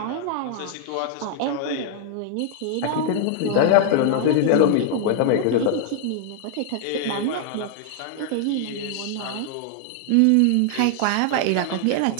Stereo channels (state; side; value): different; both; correlation 0.00